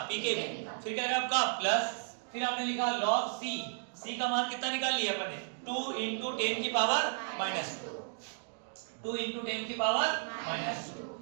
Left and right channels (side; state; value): left; silent; digital silence